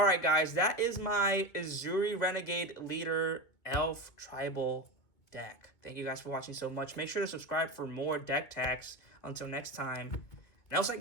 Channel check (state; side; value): late; right; 2.5 ms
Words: guys, that is my Ezuri Renegade Leader Elf Tribal deck. Thank you guys for watching so much. Make sure to subscribe for more deck tags. Until next time, Nelside